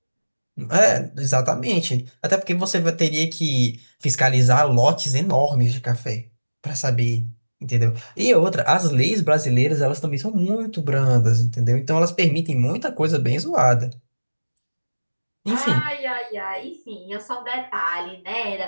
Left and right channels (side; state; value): both; inverted; correlation -1.00